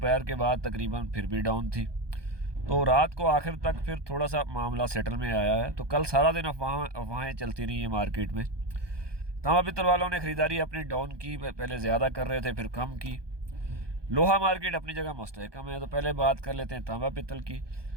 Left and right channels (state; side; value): late; left; 1.2 ms